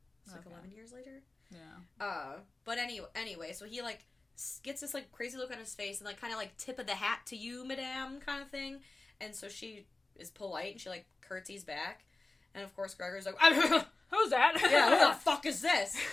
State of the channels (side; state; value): right; quieter; 3.2 dB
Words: It's like 11 years later. Yeah. But anyway, so he, like, gets this, like, crazy look on his face and, like, kind of, like, tip of the hat to you, madame, kind of thing. And so she is polite and she, like, curtsies back. And, of course, Gregor's like, who's that? Yeah, who the fuck is this?